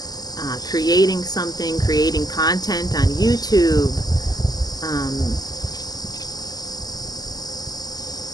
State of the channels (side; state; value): right; late; 0.19 ms